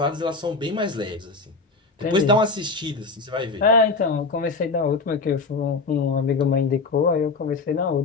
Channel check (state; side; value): quieter; right; 4.0 dB